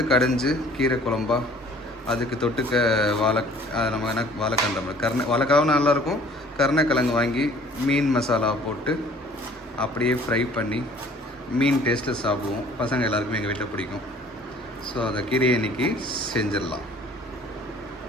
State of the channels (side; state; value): both; normal; correlation 0.52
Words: கடைஞ்சி கீரை குழம்பா, அதுக்கு தொட்டுக்க நம்ம என்ன வாழைக்கண்டை வாழைக்காவும் நல்லாயிருக்கும். கருணைக்கிழங்கு வாங்கி மீன் மசாலா போட்டு அப்படியே ஃப்ரை பண்ணி மீன் டேஸ்ட்டில் சாப்பிடுவோம். பசங்க எல்லாருக்குமே எங்கள் வீட்டில் பிடிக்கும். ஸோ அந்த கீரையை இன்றைக்கி செஞ்சிடலாம்.